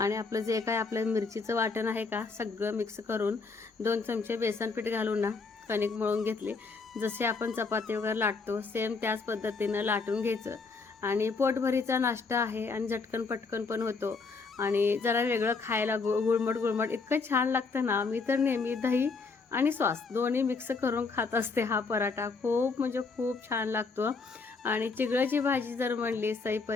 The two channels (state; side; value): quieter; right; 4.4 dB